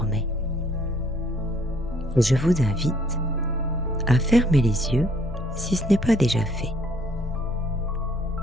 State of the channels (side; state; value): both; normal; correlation 0.63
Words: Et je vous invite à fermer les yeux si ce n'est pas déjà fait.